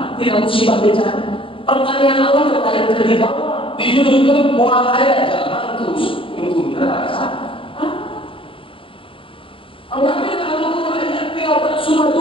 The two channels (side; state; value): right; late; 0.25 ms